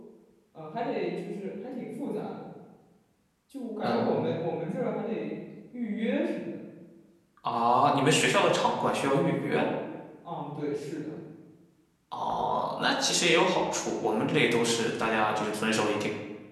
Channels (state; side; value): identical; both; correlation 1.00